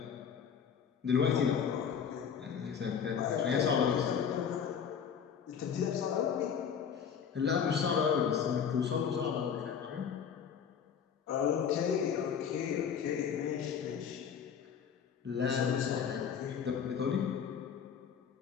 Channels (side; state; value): right; quieter; 7.4 dB